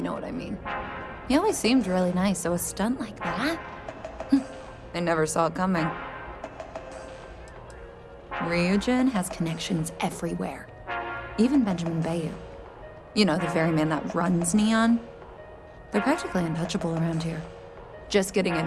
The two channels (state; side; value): identical; both; correlation 1.00